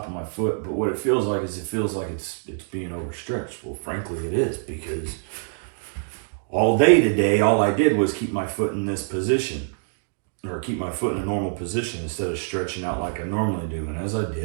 of my foot. But what it feels like is it's being overstretched. Well, frankly, it is, because all day today, all I did was keep my foot in this position, or keep my foot in a normal position instead of stretching out like I normally do. And as I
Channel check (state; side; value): silent; left; digital silence